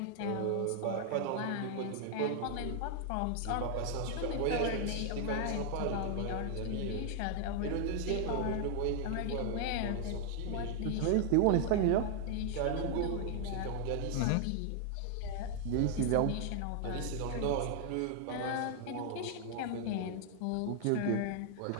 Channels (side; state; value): both; different; correlation 0.00